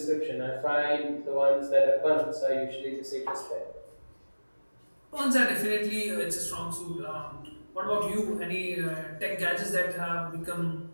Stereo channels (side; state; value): both; inverted; correlation -1.00